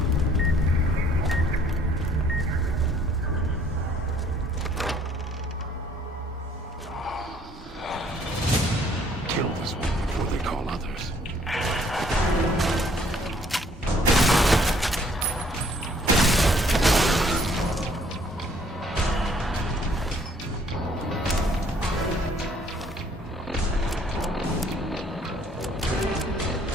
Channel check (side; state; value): both; normal; correlation 0.61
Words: Kill this one before they call others.